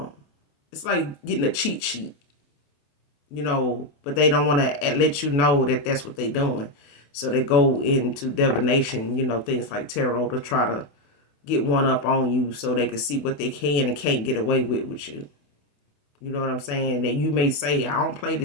it's like getting a cheat sheet, but they don't want to let you know that that's what they're doing. So they go into divination, things like tarot, to try to get one up on you so they can see what they can and can't get away with you. You know what I'm saying? That you may say, I don't play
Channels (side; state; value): right; late; 28 ms